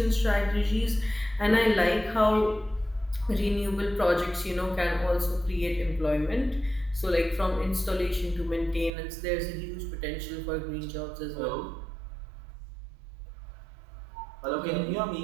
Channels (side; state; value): left; drops out; at 8.9 s